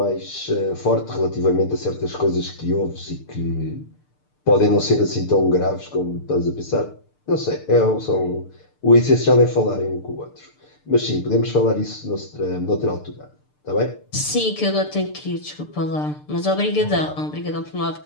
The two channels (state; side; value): late; right; 6.7 ms